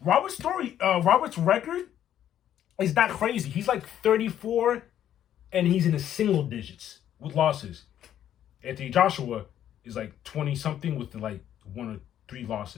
story, Robert's record is not crazy. He's like 34, and he's in the single digits with losses. Anthony Joshua is like 20-something with like 1 or 3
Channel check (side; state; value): right; quieter; 10.8 dB